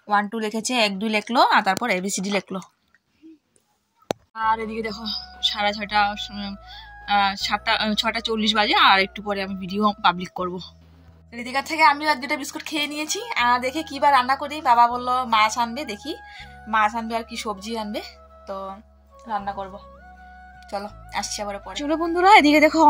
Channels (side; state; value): both; identical; correlation 1.00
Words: 1 2 লিখেছে, 1 2 লিখলো, আর তারপর ABCD লিখলো। আর এদিকে দেখো 6:30 6:40 বাজে, আর একটু পরে আমি ভিডিও পাবলিক করবো। ঋতিকার থেকে আমিও 1-2টা বিস্কুট খেয়ে নিয়েছি। দেখে কি বা রান্না করি, বাবা বললো মাছ আনবে, দেখি মাছ আনবে আর কি সবজি আনবে, তো রান্না করব। চলো আসছি আবার পরে। চলো বন্ধুরা এদিকে দেখো